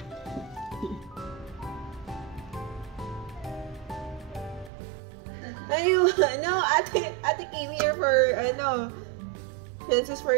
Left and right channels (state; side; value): drops out; left; at 4.7 s